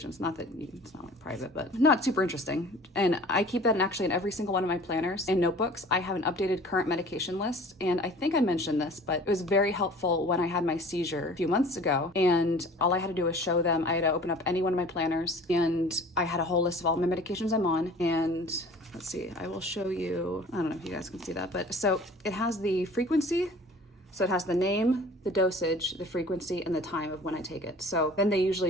Not that it's not like private, but not super interesting. And I keep that in every single one of my planners and notebooks. I have an updated current medication list. And I think I mentioned this, but it was very helpful when I had my seizure a few months ago. And all I had to do was show them. I had to open up any one of my planners, and I had a whole list of all my medications I'm on. And let's see, I will show you, I don't know if you guys can see that, but so it has the frequency. So it has the name, the dosage, the frequency, and the time of when I take it. So then they usually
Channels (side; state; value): both; normal; correlation 0.46